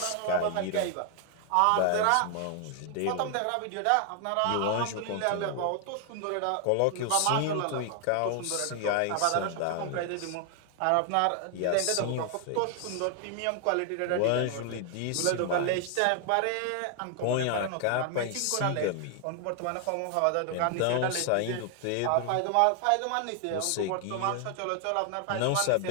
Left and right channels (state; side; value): different; both; correlation 0.00